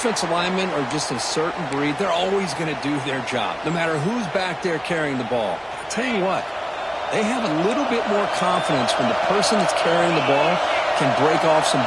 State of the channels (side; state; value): both; identical; correlation 1.00